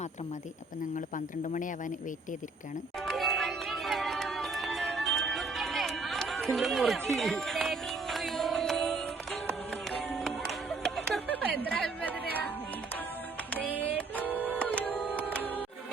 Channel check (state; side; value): quieter; left; 3.7 dB